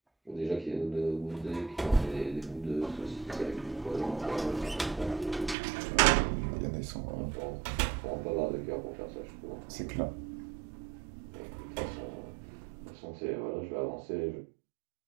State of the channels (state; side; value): drops out; left; at 5.6 s